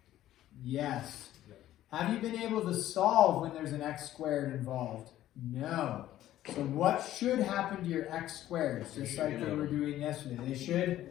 Yes. Have you been able to solve when there's an x squared involved? No. So what should happen to your x squareds? Just like they were doing yesterday.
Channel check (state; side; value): quieter; right; 13.4 dB